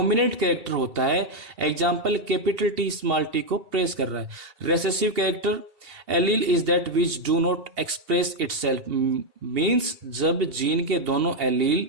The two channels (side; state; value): left; late; 2.7 ms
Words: कैरेक्टर होता है। Example capital T small T को प्रेस कर रहा है। Recessive character allele is that which do not express itself, means जब जीन के दोनों